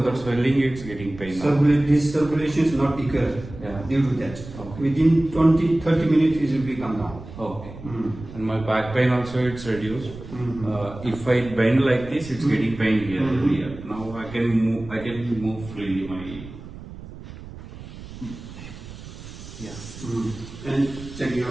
that swelling, it's getting pain now. This circulation is not equal due to that. Okay. Within 20-30 minutes, it will be come down. Okay. And my back pain also it's reduced. If I bend like this, it's getting pain here. Now I can move freely. And check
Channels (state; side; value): noise; right; rumble, 14 dB below the sound